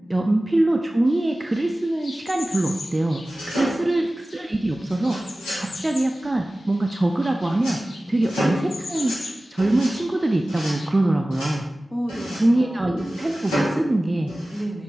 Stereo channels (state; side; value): normal; both; correlation 0.97